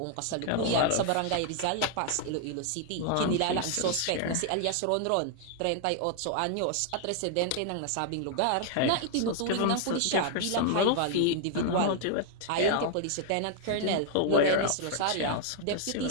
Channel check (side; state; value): both; different; correlation 0.00